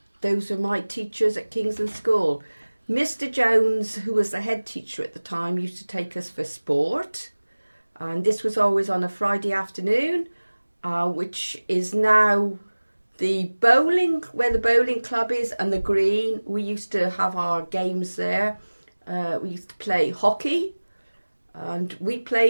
those were my teachers at Kingsland School. Mr. Jones, who was the head teacher at the time, used to take us for sport. And this was always on a Friday afternoon, which is now the bowling, where the bowling club is, and the green. We used to have our games there. We used to play hockey, and we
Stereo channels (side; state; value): both; inverted; correlation -1.00